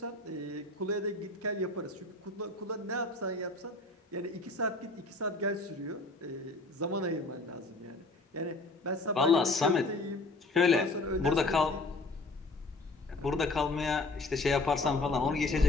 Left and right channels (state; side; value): quieter; right; 3.0 dB